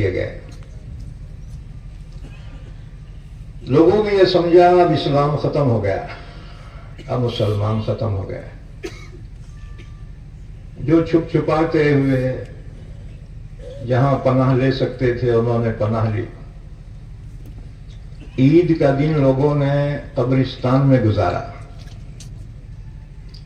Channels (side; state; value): both; identical; correlation 1.00